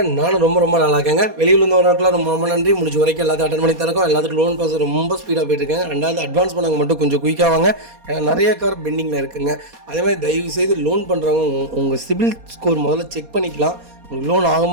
நானும் ரொம்ப நல்லா இருக்கேங்க. வெளியில் இருந்தவர்களுக்குலாம் ரொம்ப நன்றி. முடிஞ்ச வரைக்கும் எல்லாத்தையும் அட்டன் பண்ணி தரக்கும். எல்லாத்துக்கும் லோன் ப்ராசஸ் ரொம்ப ஸ்பீடாக போயிட்டு இருக்கேன். ரெண்டாவது அட்வான்ஸ் பண்ணவங்க மட்டும் கொஞ்சம் குயிக்காக வாங்க. ஏன்னா நிறைய கார் பெண்டிங்கில் இருக்குங்க. அதே மாதிரி தயவு செய்து லோன் பண்ணுறவங்க உங்கள் சிபில் ஸ்கோர் முதல்ல செக் பண்ணிக்கலாம். உங்களுக்கு லோன்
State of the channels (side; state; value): left; late; 4.2 ms